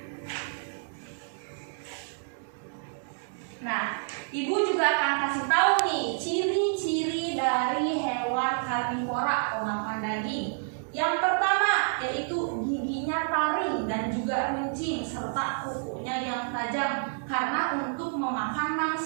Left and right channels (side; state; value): left; silent; digital silence